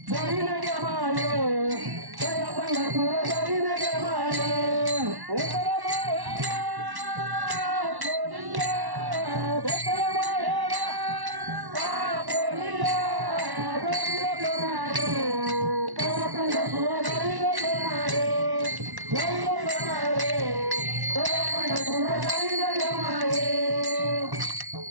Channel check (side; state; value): left; late; 1.1 ms